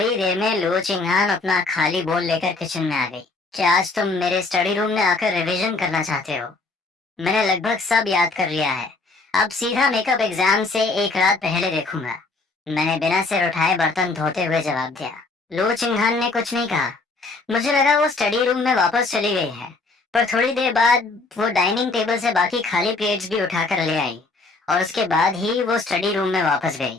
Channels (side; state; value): right; quieter; 3.6 dB